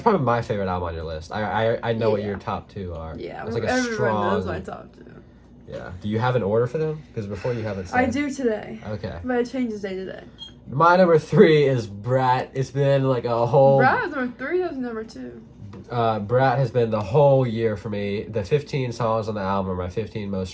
probably my favorite album on your list. I know what Yeah. your top 2 are. Yeah, It's like a everyone knows strong. my top 2. Yeah. Do you have an order for them? Because before you haven't said. I do today, Okay. but it changes day to day. My number 3 is Brat. It's been like a whole. Brad was number 3. That was number 2. Brat has been the whole year for me. The 15 songs on the album are my 15 most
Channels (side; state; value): both; identical; correlation 1.00